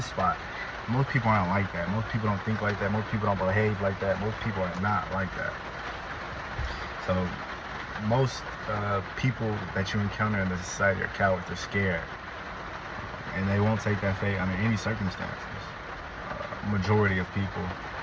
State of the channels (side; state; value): both; identical; correlation 1.00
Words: spot. Most people aren't like that. Most people don't think like that. Most people don't behave like that. Most people are not like that. So most people that you encounter in the society are cowards. They're scared. And they won't take that fate under any circumstances. Majority of people.